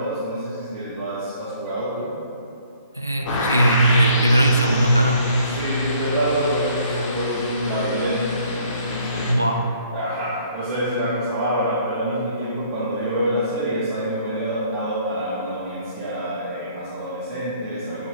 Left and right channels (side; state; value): both; inverted; correlation -0.61